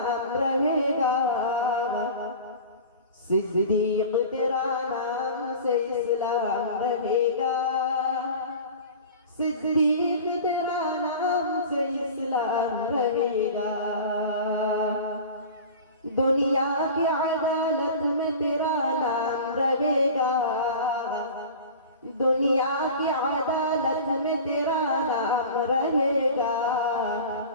रहेगा। सिद्दीक तेरा नाम से इस्लाम रहेगा, सिद्दीक तेरा नाम से इस्लाम रहेगा। दुनिया की अदालत में तेरा नाम रहेगा, दुनिया की अदालत में तेरा नाम रहेगा।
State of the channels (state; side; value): inverted; both; correlation -0.37